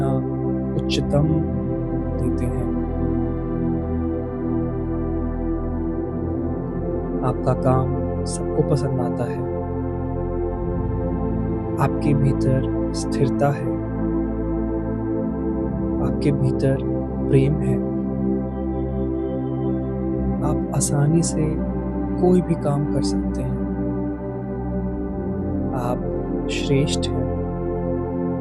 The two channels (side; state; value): both; identical; correlation 1.00